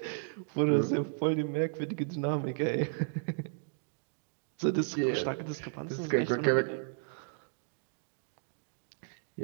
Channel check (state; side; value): silent; left; digital silence